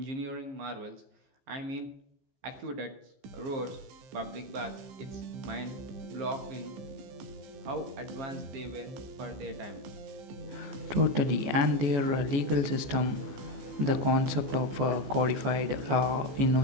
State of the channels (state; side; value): late; left; 14 ms